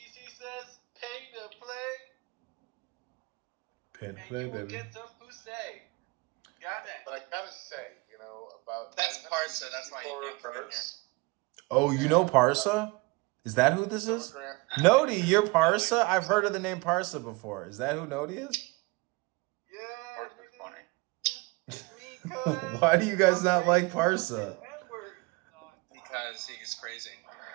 says pay to play. Pay to and play, you will baby. get some pussy. Goddamn. But I gotta say, about That's Parsa. That's why you can't come in here. Oh, you know Parsa? Is that who this is? Nodi, you're Parsa? I've heard of the name Parsa before. Is that who Nodi is? Why do you guys not like Parsa? Because he's crazy.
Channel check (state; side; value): quieter; left; 25.5 dB